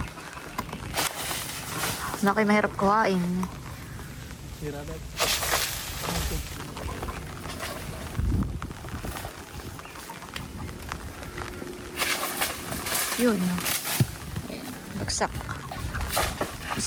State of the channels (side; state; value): both; identical; correlation 1.00